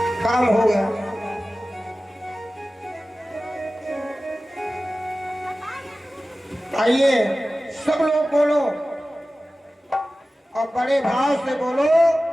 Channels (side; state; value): both; normal; correlation 0.96